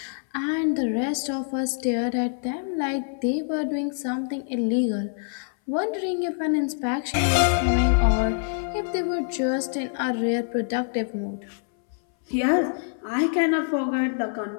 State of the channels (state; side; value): silent; right; 62 dB below the other